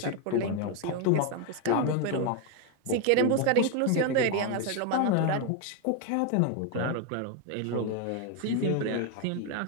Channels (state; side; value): different; both; correlation 0.01